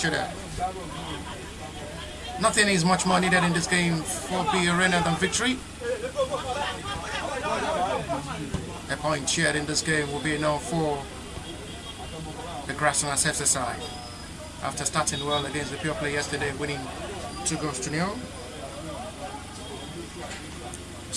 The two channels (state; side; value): identical; both; correlation 1.00